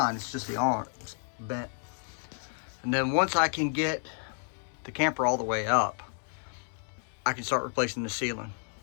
it's just the arms bent. And then once I can get the camper all the way up, I can start replacing the ceiling.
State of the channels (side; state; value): right; silent; 57 dB below the other